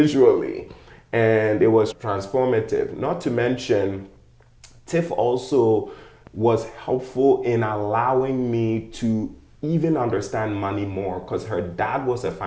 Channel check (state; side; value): identical; both; correlation 1.00